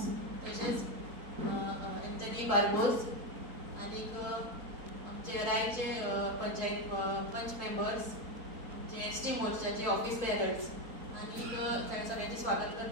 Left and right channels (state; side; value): late; left; 4.5 ms